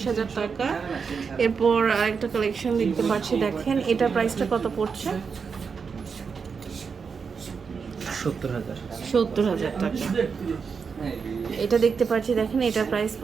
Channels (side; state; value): left; quieter; 5.7 dB